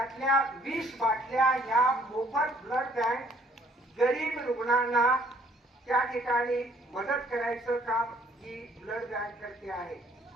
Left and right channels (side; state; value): both; normal; correlation 0.61